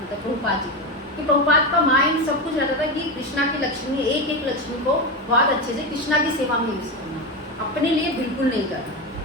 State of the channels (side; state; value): both; normal; correlation 0.16